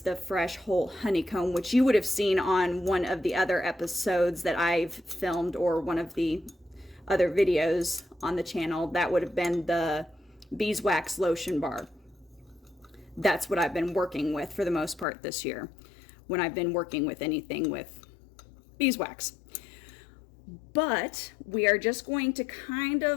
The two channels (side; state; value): right; drops out; at 15.1 s